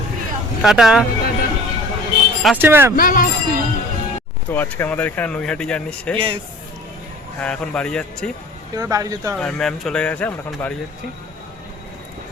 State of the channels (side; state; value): both; normal; correlation 0.45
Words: টাটা, আসছি ম্যাম। তো আজকে আমাদের এখানে নৈহাটি জার্নি শেষ। Yes, হ্যাঁ, এখন বাড়ি যাচ্ছি। এবার বাড়ি যেতে হবে। আর ম্যাম চলে গেছে, আমরা এখন বাড়ি যাচ্ছি। তো